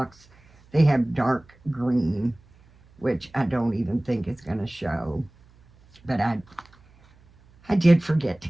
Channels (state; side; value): noise; right; hum, 29 dB below the sound